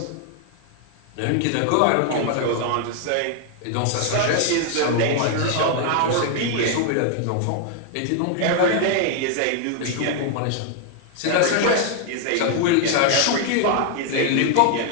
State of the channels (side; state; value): both; different; correlation 0.00